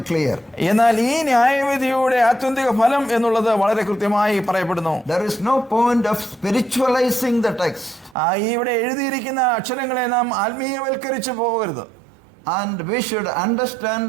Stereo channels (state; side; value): drops out; left; at 8.2 s